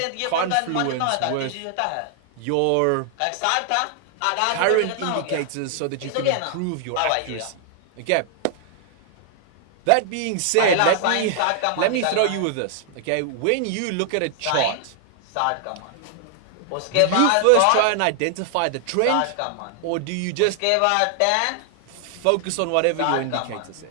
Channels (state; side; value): different; both; correlation 0.00